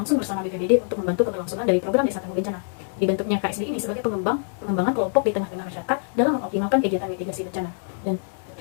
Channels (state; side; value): silent; right; digital silence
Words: bersama BPBD untuk membantu keberlangsungan dari program Desa Tangguh Bencana. Dibentuknya KSB ini sebagai pengembangan kelompok di tengah-tengah masyarakat dalam mengoptimalkan kegiatan mitigasi bencana. Dan